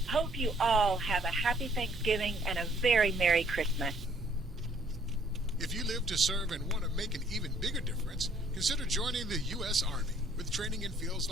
Hope you all have a happy Thanksgiving and a very Merry Christmas. If you live to serve and want to make an even bigger difference, consider joining the U.S. Army. With training in fields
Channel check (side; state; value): both; normal; correlation 0.62